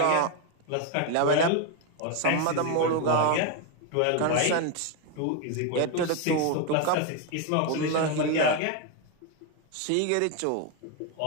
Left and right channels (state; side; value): different; both; correlation 0.01